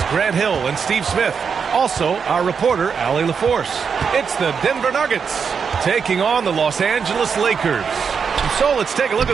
Grant Hill and Steve Smith. Also, our reporter, Allie LaForce. It's the Denver Nuggets taking on the Los Angeles Lakers. So let's take a look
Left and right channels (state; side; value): quieter; left; 6.2 dB